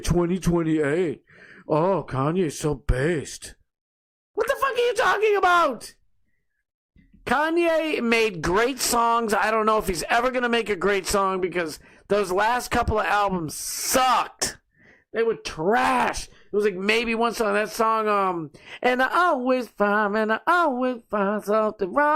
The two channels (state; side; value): identical; both; correlation 1.00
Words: 2028. Oh, Kanye's so based. What the fuck are you talking about? Kanye made great songs. I don't know if he's ever going to make a great song because those last couple of albums sucked. They were trash. It was like maybe one song, that song, and I always find something